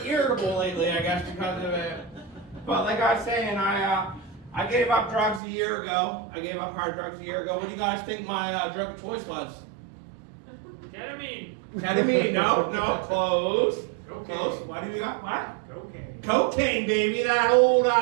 irritable lately, I guess, because of it. But like I was saying, I gave up drugs a year ago. I gave up hard drugs a year ago. What do you guys think my drug of choice was? Ketamine? No, close. Close. What do you got? What? Cocaine, baby. That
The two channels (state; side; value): drops out; left; at 5.4 s